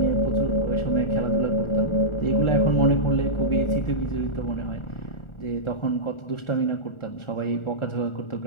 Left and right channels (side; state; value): right; late; 1.4 ms